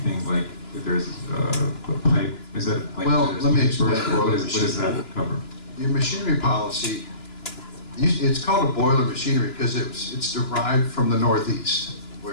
like if there's a pipe. Is that like? Well, let me explain What does that cover? Your machinery policy, it's called a boiler machinery because it's derived from the Northeast,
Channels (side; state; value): right; late; 2.9 ms